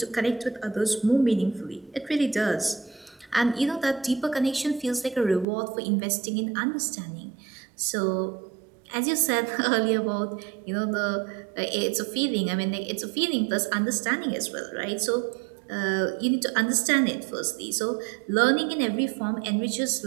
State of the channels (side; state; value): left; drops out; at 5.5 s